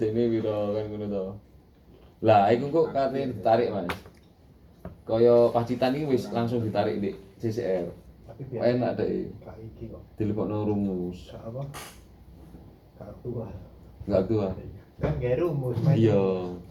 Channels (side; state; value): both; identical; correlation 1.00